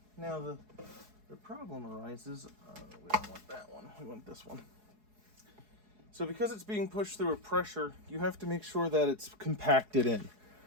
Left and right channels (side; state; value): left; late; 4.7 ms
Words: Now the problem arises, we don't want that one, we want this one. So because it's being pushed through a pressure, you have to make sure that it's compacted in.